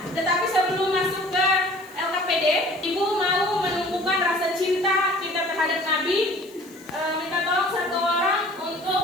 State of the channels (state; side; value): noise; left; hiss, 25 dB below the sound